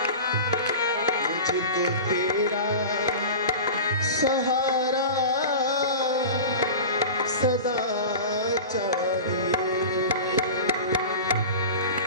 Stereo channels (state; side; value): inverted; both; correlation -0.32